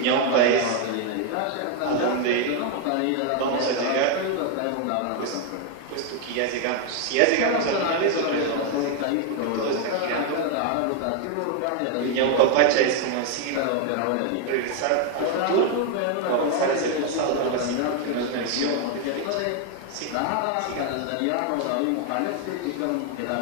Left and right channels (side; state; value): both; different; correlation 0.01